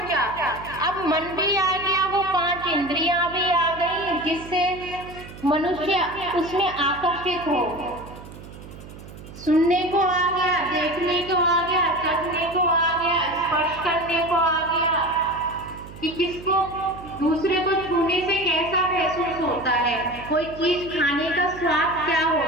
अब मन भी आ गया, वो 5 इंद्रियां भी आ गई, जिससे मनुष्य उसमें आकर्षित हो। सुनने को आ गया, देखने को आ गया, चखने को आ गया, स्पर्श करने को आ गया कि किसको दूसरे को छूने से कैसा महसूस होता है, कोई चीज खाने का स्वाद क्या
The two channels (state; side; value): noise; right; hum, 16 dB below the sound